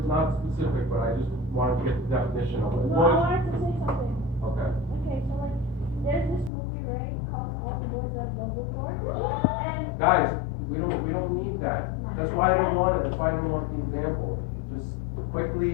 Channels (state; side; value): drops out; right; at 6.5 s